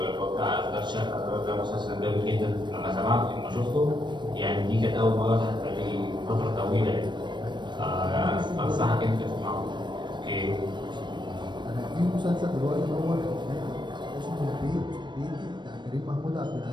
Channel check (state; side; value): late; left; 0.22 ms